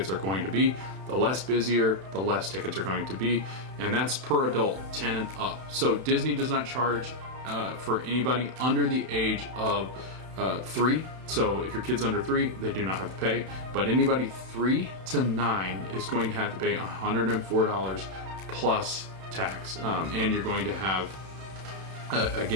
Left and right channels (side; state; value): left; late; 31 ms